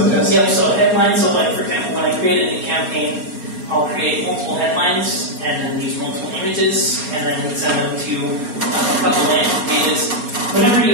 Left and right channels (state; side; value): late; left; 4.2 ms